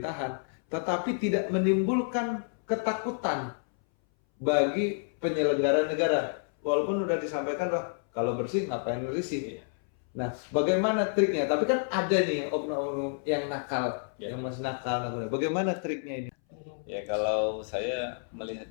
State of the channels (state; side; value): silent; right; 58 dB below the other